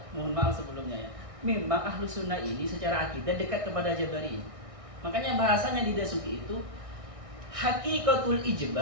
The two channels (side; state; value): left; late; 1.6 ms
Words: mohon maaf sebelumnya ya, memang Ahlus Sunnah ini secara akidah dekat kepada Jabari. Makanya bahasanya di Dasuki itu hakikatul